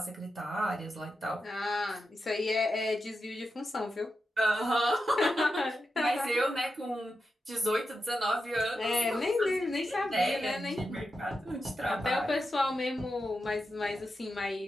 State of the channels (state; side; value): normal; both; correlation 0.88